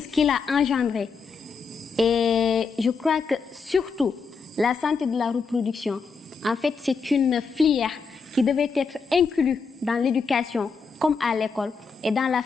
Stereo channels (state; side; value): quieter; right; 5.0 dB